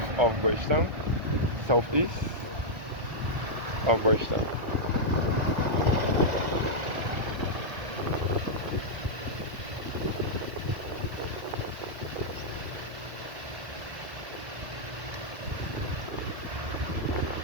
of Bridgetown, southeast of Bridgetown.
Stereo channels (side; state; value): left; late; 1.5 ms